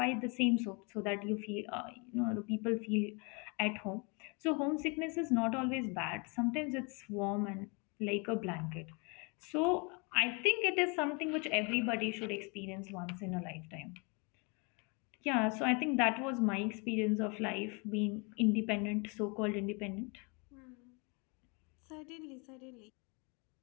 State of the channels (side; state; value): right; quieter; 31.9 dB